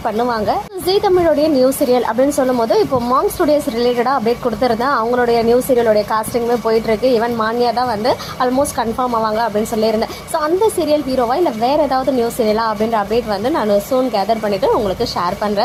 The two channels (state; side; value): identical; both; correlation 1.00